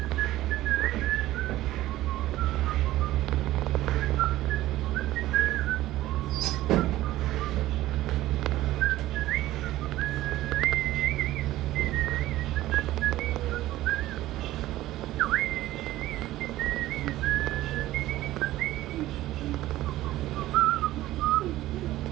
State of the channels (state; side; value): quieter; left; 15.6 dB